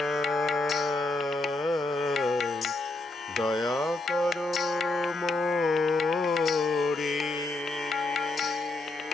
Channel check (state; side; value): quieter; right; 3.0 dB